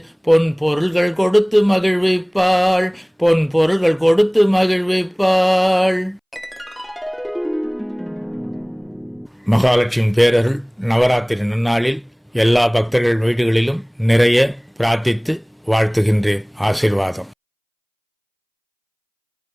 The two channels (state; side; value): identical; both; correlation 1.00